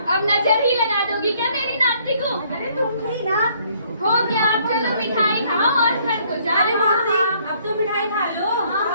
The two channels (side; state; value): both; inverted; correlation -0.64